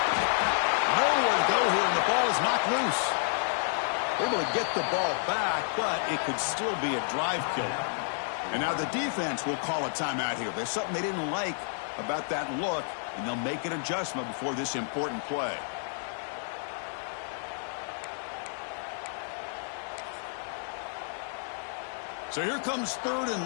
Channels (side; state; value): right; silent; 57 dB below the other